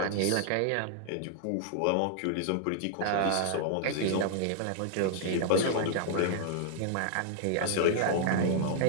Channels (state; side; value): different; both; correlation -0.01